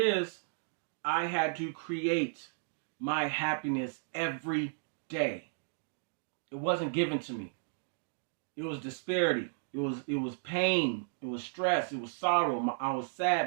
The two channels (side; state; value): left; silent; digital silence